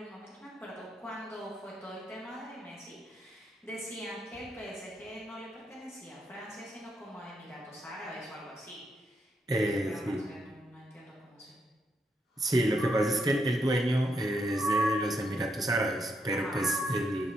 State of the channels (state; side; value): normal; both; correlation 0.79